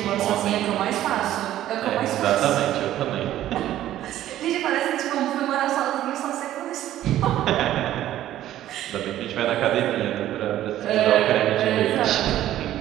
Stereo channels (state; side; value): quieter; left; 13.0 dB